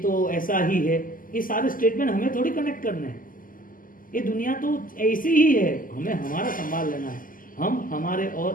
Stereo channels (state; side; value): late; right; 0.41 ms